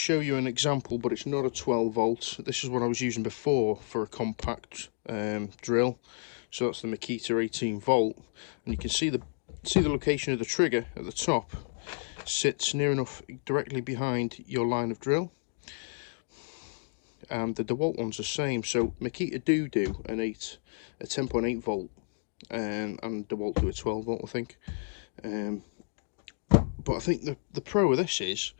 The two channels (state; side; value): silent; right; digital silence